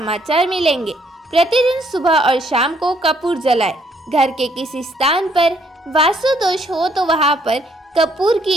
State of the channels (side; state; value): both; normal; correlation 0.68